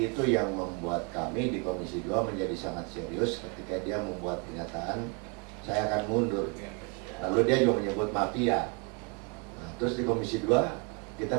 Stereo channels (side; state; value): left; quieter; 31.9 dB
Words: itu yang membuat kami di Komisi 2 menjadi sangat serius ketika dia membuat pernyataan saya akan mundur. Lalu dia juga menyebut mafia. Nah, terus di Komisi 2